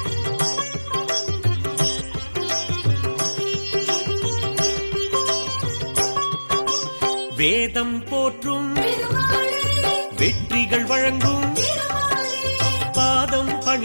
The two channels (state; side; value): inverted; both; correlation -1.00